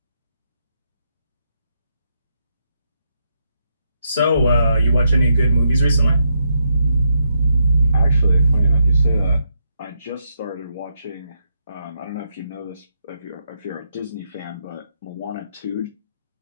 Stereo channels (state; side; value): inverted; both; correlation -0.79